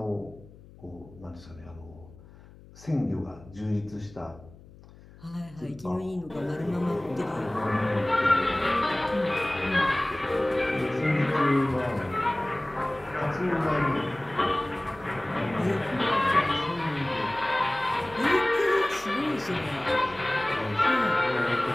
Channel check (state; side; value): noise; left; hum, 21 dB below the sound